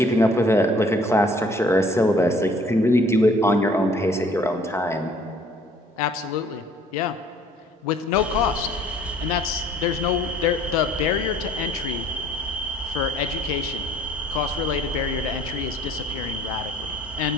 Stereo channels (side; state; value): both; normal; correlation 0.55